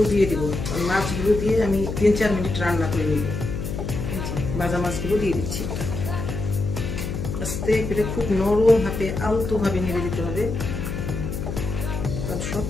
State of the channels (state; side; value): noise; left; hum, 4 dB below the sound